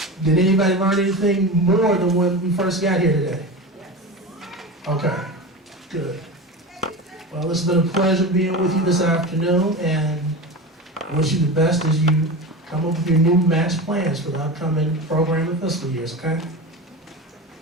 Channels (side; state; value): both; normal; correlation 0.26